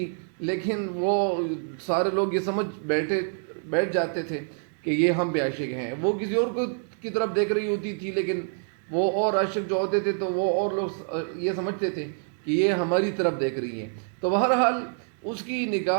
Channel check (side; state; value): left; silent; 60 dB below the other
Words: لیکن وہ سارے لوگ یہ سمجھ بیٹھ جاتے تھے کہ یہ ہم پہ عاشق ہیں. وہ کسی اور کی طرف دیکھ رہی ہوتی تھی، لیکن وہ اور عاشق جو ہوتے تھے تو وہ اور لوگ یہ سمجھتے تھے کہ یہ ہماری طرف دیکھ رہی ہیں. تو بہرحال اس کی